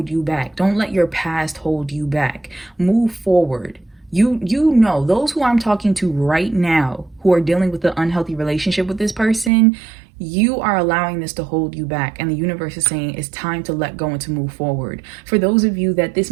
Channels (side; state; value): left; drops out; at 9.5 s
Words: you back. Don't let your past hold you back. Move forward. You know, those who I'm talking to right now who are dealing with the unhealthy relationship with this person, you are allowing this to hold you back, and the universe is saying it's time to let go and to move forward. For those of you that this